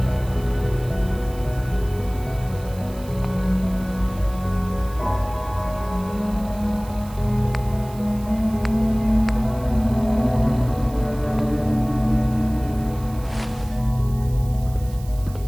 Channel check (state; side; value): noise; right; hiss, 21 dB below the sound